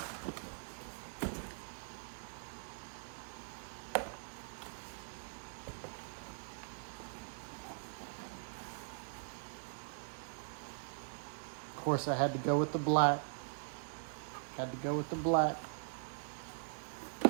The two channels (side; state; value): left; silent; digital silence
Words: Of course, I had to go with the black. Had to go with the black.